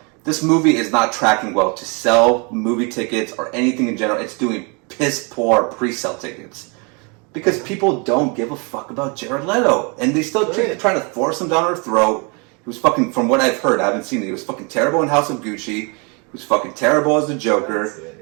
This movie is not tracking well to sell movie tickets or anything in general. It's doing piss poor pre-sale tickets. Because people don't give a fuck about Jared Leto. And they still trying to force him down our throat. He was fucking, from what I've heard, I haven't seen it, he was fucking terrible in House of Gucci. He was fucking terrible as the Joker.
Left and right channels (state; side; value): quieter; left; 32.7 dB